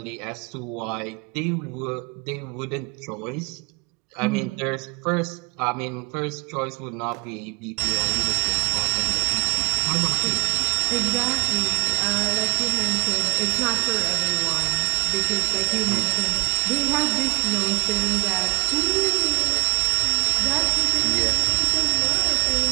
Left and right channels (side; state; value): left; quieter; 26.8 dB